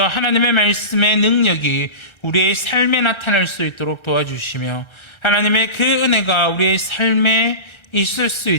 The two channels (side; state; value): right; late; 1.3 ms